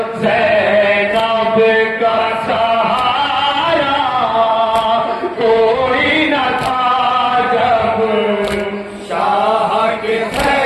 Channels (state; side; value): identical; both; correlation 1.00